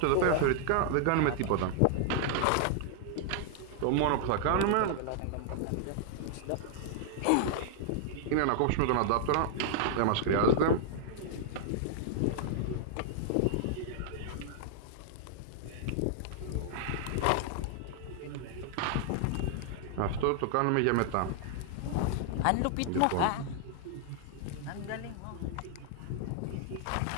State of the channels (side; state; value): both; different; correlation -0.01